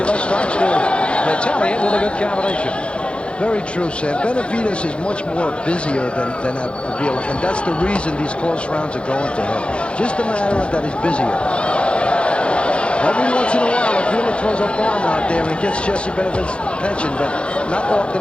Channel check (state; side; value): late; right; 0.058 ms